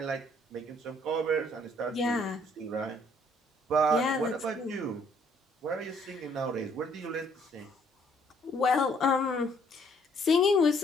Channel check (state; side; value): normal; both; correlation 0.64